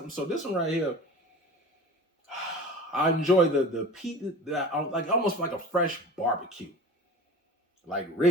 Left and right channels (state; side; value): normal; both; correlation 0.36